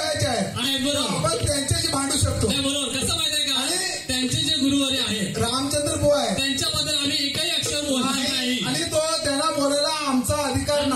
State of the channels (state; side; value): identical; both; correlation 1.00